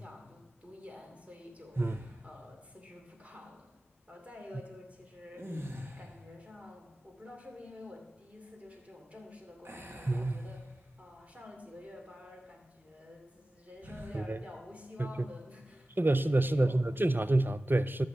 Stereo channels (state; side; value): normal; both; correlation 0.96